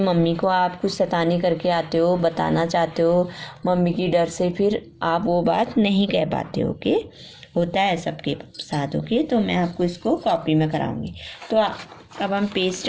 को आप कुछ शैतानी करके आते हो, बताना चाहते हो, मम्मी की डर से फिर आप वो बात नहीं कह पाते। ओके, होता है सबके साथ। ओके, तो मैं आपको इसको कॉपी में कराऊंगी। तो अब हम पेज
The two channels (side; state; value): both; identical; correlation 1.00